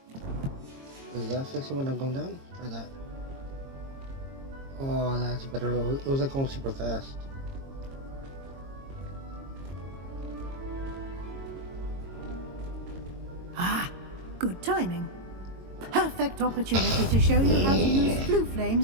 Is that fixing when I'm going down? Try that. Oh, that's better. It was like going super fast. Ah, good timing. Perfect opportunity to show you how to use blue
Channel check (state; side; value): late; left; 22 ms